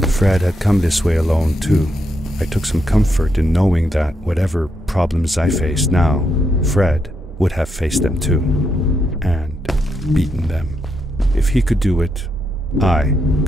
Fred had come this way alone, too. I took some comfort in knowing that whatever problems I faced now, Fred would have faced them too, and beaten them. If he could do it, I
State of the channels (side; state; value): both; normal; correlation 0.80